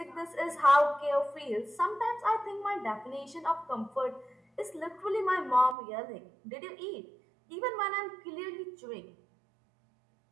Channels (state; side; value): drops out; left; at 5.8 s